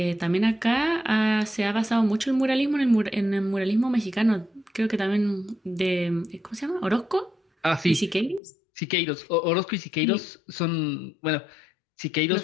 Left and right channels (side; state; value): right; drops out; at 8.4 s